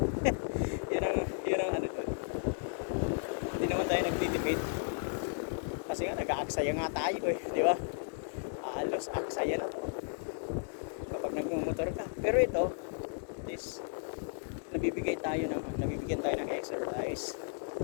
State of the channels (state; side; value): silent; right; 55 dB below the other